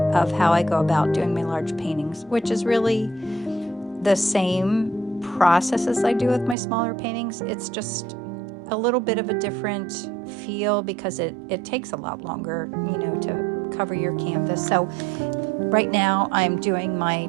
how I go about doing my large paintings, which is really the same process as I do with my smaller paintings. It's just a little bit of a different feel because it takes a lot longer, to cover your canvas. So right now I'm doing my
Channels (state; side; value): drops out; left; at 6.6 s